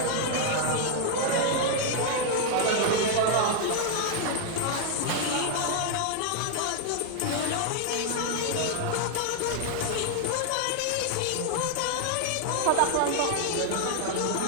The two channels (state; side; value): different; both; correlation 0.00